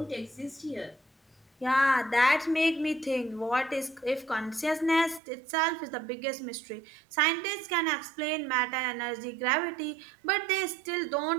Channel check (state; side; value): drops out; left; at 5.2 s